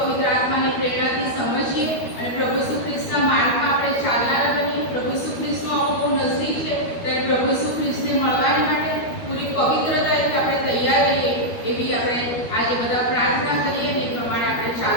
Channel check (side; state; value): right; late; 12 ms